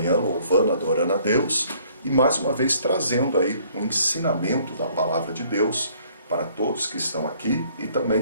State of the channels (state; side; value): inverted; both; correlation -0.60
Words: louvando, adorando a Deus e mais uma vez trazendo aí um ensinamento da palavra de Deus para todos que estão aqui e